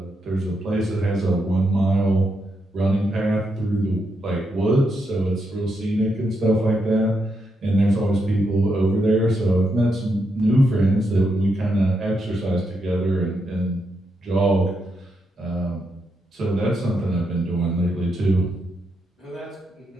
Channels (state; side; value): normal; both; correlation 0.82